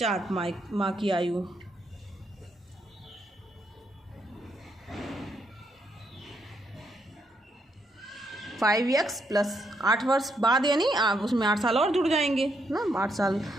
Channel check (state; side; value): normal; both; correlation 0.77